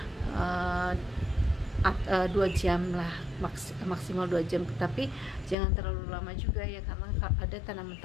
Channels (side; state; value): right; drops out; at 5.6 s